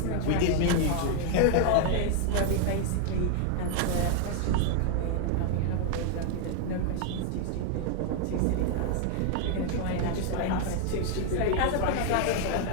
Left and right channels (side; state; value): both; different; correlation 0.00